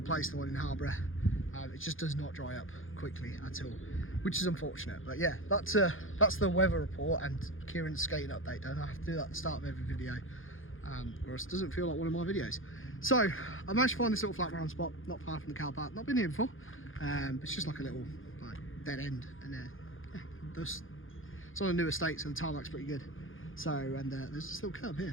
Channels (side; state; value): right; late; 0.59 ms